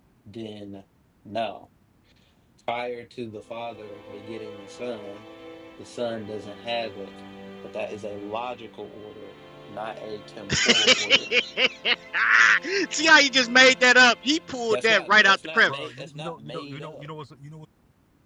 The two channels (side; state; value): both; identical; correlation 1.00